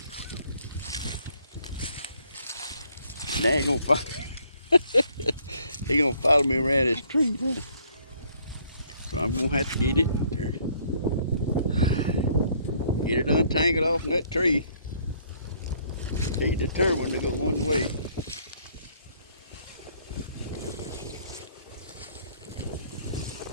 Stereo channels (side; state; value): both; inverted; correlation -0.64